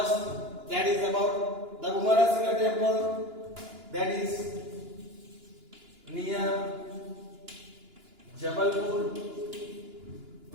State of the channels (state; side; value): late; left; 2.9 ms